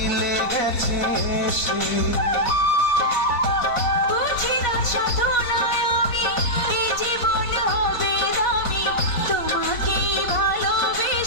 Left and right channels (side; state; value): right; late; 4.5 ms